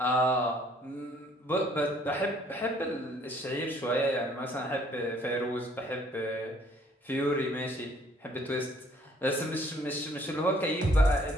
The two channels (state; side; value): normal; both; correlation 0.61